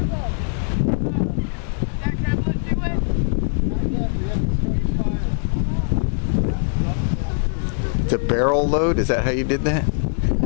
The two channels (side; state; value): right; silent; 65 dB below the other